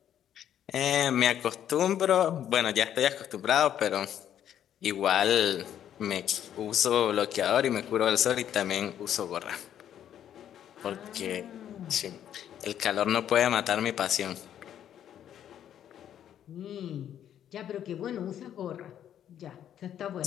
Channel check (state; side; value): quieter; right; 10.3 dB